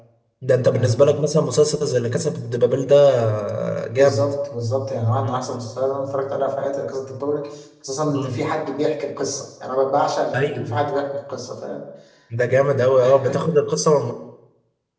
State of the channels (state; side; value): identical; both; correlation 1.00